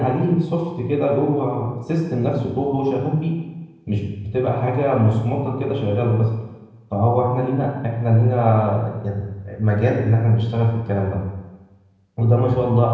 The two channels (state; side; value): identical; both; correlation 1.00